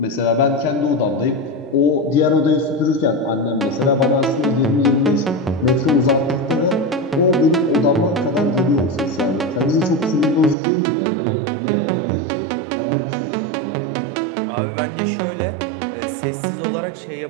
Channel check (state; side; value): drops out; left; at 10.6 s